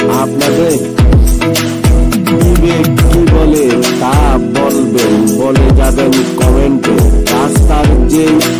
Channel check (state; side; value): identical; both; correlation 1.00